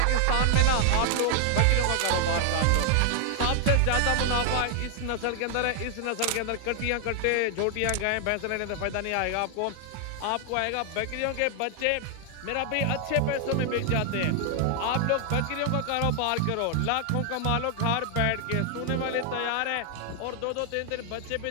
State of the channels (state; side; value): different; both; correlation 0.00